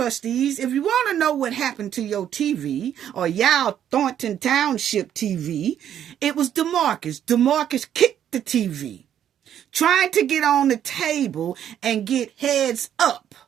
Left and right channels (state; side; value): quieter; left; 10.0 dB